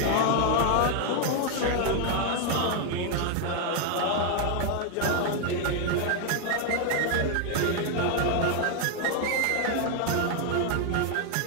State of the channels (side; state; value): both; different; correlation 0.00